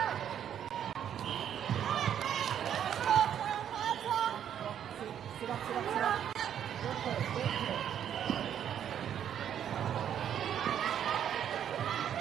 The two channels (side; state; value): left; quieter; 9.5 dB